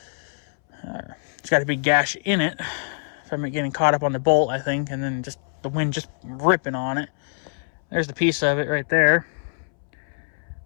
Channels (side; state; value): right; silent; 62 dB below the other